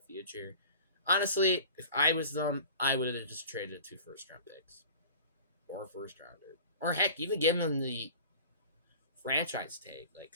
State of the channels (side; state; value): both; inverted; correlation -0.41